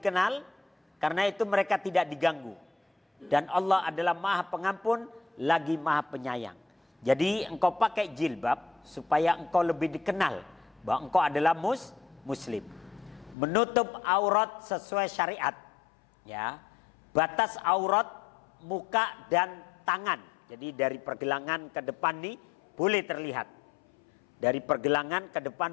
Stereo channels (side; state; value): right; drops out; at 13.4 s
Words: karena itu mereka tidak diganggu. Dan Allah adalah Maha Pengampun lagi Maha Penyayang. Jadi engkau pakai jilbab supaya engkau lebih dikenal bahwa engkau adalah muslim. Menutup aurat sesuai syariat. Ya. Batas aurat muka dan tangan. Jadi dari pergelangan ke depan nih boleh terlihat. Dari pergelangan ke